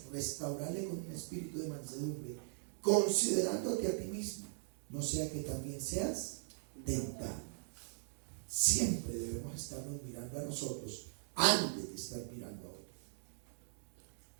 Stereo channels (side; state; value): left; silent; digital silence